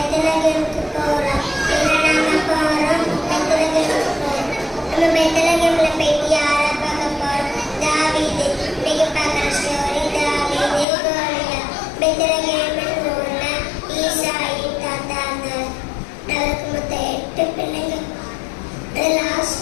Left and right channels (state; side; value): drops out; right; at 10.9 s